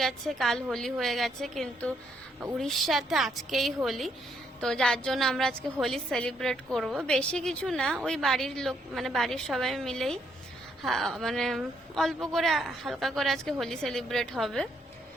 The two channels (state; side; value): normal; both; correlation 0.73